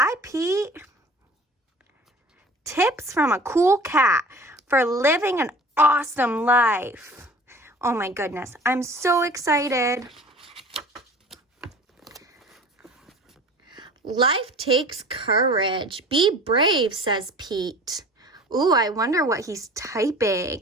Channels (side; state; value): both; normal; correlation 0.44